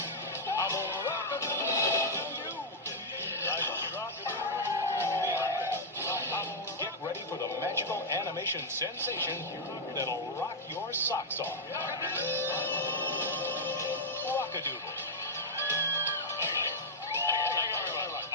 I'm gonna rock-a-doodle to you. Like a rock-a-doodle. Get ready for the magical animation sensation that'll rock your socks off. Rock-A-Doodle.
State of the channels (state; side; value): normal; both; correlation -0.04